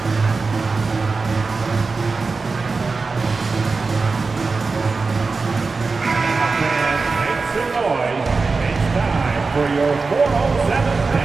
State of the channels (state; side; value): quieter; left; 4.2 dB